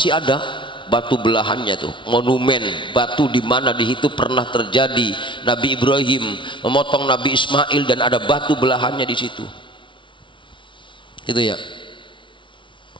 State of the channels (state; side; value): late; right; 0.24 ms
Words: ada batu belahannya tuh, monumen batu di mana di situ pernah terjadi Nabi Ibrahim memotong Nabi Ismail dan ada batu belahannya di situ. Itu ya.